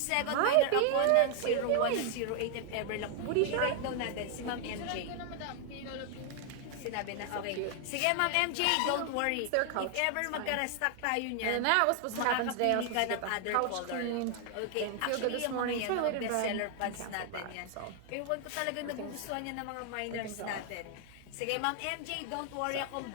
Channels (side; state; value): both; different; correlation 0.00